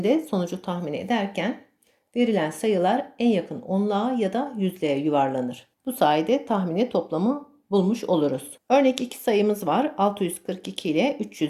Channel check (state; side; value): identical; both; correlation 1.00